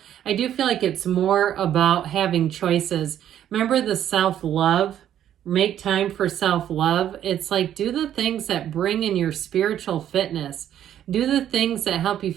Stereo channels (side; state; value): left; quieter; 10.8 dB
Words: I do feel like it's more about having choices. Remember the self-love? Make time for self-love. It's like do the things that bring in your spiritual fitness. Do the things that help you